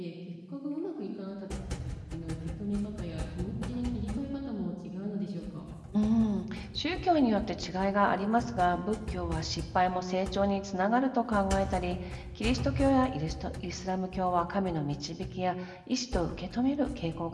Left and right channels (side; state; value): both; identical; correlation 1.00